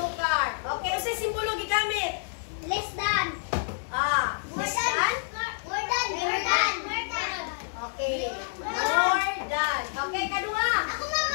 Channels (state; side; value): silent; right; digital silence